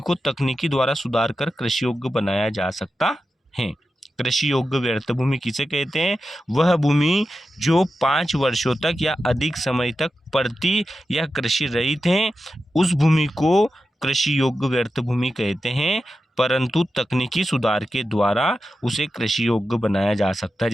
को तकनीकी द्वारा सुधार कर कृषि योग्य बनाया जा सकता है। कृषि योग्य व्यर्थ भूमि किसे कहते हैं? वह भूमि जो 5 वर्षों तक या अधिक समय तक परती या कृषि रहित है, उस भूमि को कृषि योग्य व्यर्थ भूमि कहते हैं। परंतु तकनीकी सुधार के द्वारा उसे कृषि योग्य बनाया जा सकता है।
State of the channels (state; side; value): normal; both; correlation 0.91